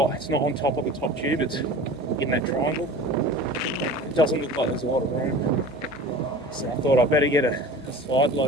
It's not on top of the top tube. It's in that triangle. It doesn't look like there's a lot of room. So I thought I better get a side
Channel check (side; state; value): both; normal; correlation 0.39